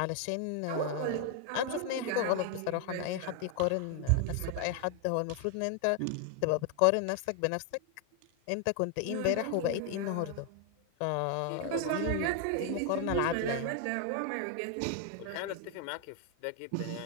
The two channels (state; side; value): different; both; correlation 0.00